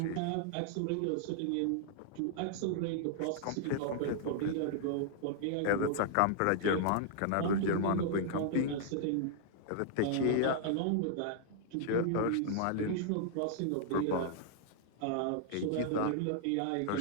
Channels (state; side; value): different; both; correlation -0.01